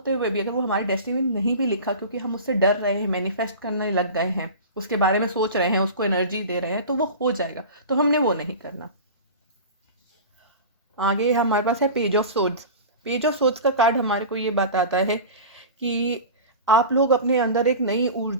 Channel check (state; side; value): inverted; both; correlation -0.33